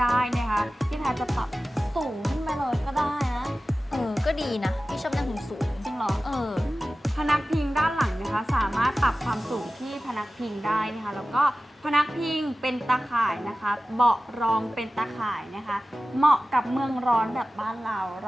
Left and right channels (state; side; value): normal; both; correlation 0.96